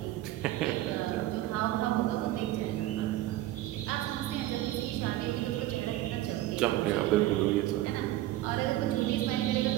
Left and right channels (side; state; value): left; quieter; 15.3 dB